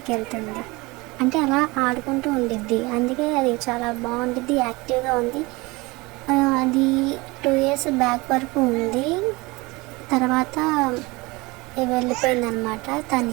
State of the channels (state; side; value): quieter; left; 23.7 dB